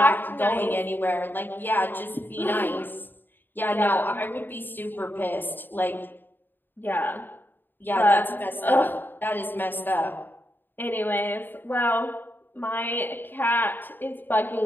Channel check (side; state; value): right; late; 0.093 ms